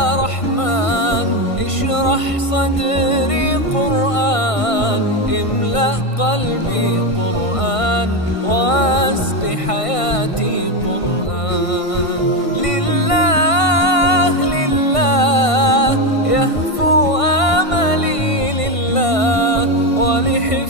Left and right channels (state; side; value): late; right; 1.5 ms